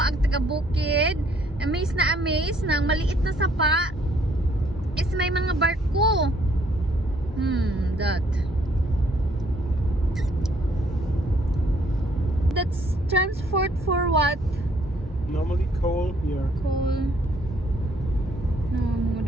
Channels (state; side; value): normal; both; correlation 0.65